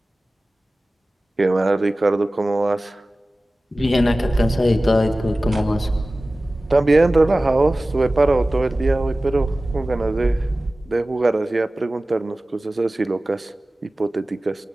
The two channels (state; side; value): normal; both; correlation 0.97